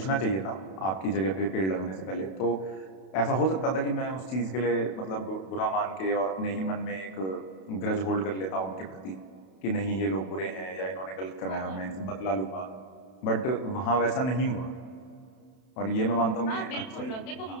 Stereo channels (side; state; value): right; late; 32 ms